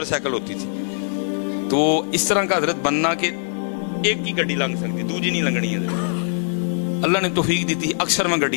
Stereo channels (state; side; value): silent; right; 64 dB below the other